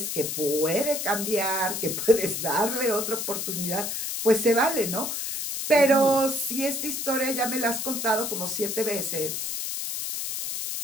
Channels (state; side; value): noise; left; hiss, 3 dB below the sound